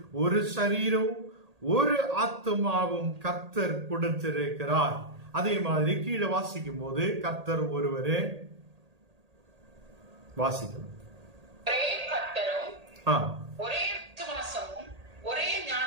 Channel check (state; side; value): late; left; 1.8 ms